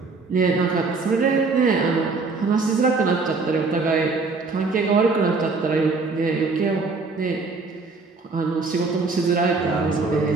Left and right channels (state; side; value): quieter; left; 4.1 dB